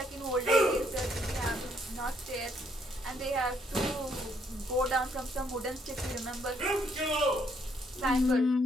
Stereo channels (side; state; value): both; normal; correlation 0.70